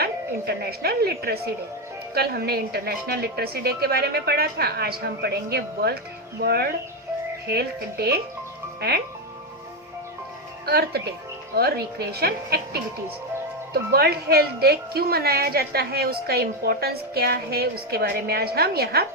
international literacy day. कल हमने इंटरनेशनल लिटरेसी डे के बारे में पढ़ा था. आज हम पढ़ेंगे world health day and earth day और रिक्रिएशन एक्टिविटीज. तो वर्ल्ड हेल्थ डे क्यों मनाया जाता है, उसका इम्पोर्टेंस क्या है, उसके बारे में आज हम यहाँ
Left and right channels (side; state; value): both; normal; correlation 0.07